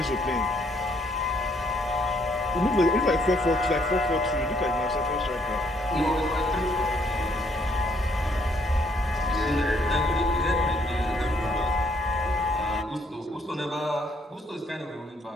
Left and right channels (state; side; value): normal; both; correlation 0.68